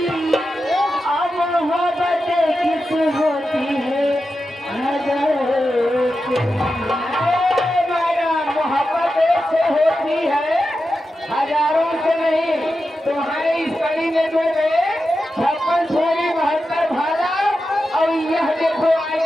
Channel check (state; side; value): normal; both; correlation 0.90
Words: मोहब्बत किस होती है मोहब्बत से होती है हजारों से नहीं। तुम्हारे इस कड़ी में जो गए 56 छोरी 72 भाला और यह देखो